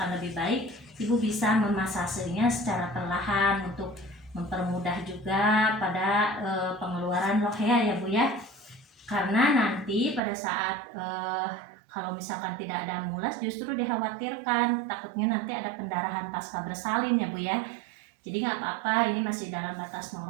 lebih baik ibu bisa memasasenya secara perlahan untuk mempermudah juga pada pengeluaran lohea ya Bu ya. Karena nanti pada saat kalau misalkan tidak ada mulas, justru dikhawatirkan takutnya nanti ada pendarahan pasca bersalin ya Bu ya. Jadi nggak apa-apa, ini masih dalam batas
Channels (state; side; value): drops out; left; at 10.2 s